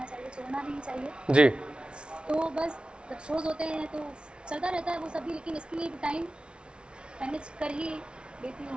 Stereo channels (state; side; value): late; left; 0.057 ms